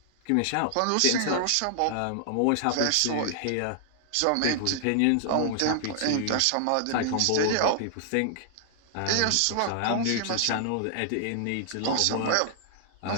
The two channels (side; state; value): both; different; correlation 0.00